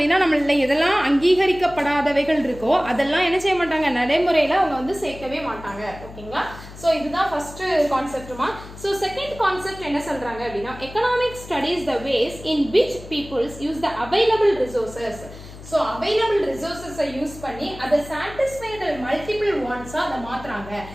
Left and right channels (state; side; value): noise; left; hum, 16 dB below the sound